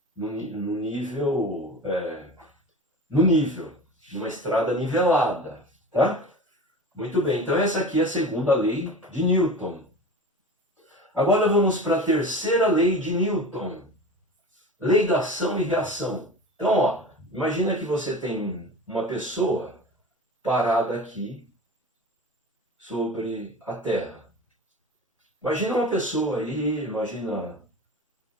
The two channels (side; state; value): both; normal; correlation 0.34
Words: no nível, numa estrada nivelada, tá? Muito bem, então essa aqui é a segunda lei de Newton. Agora vamos para a terceira lei de Newton. Lei da ação e reação. Então, ó, imagina que você tem uma pessoa parada aqui sobre a Terra. Imagina uma pessoa aí, imagina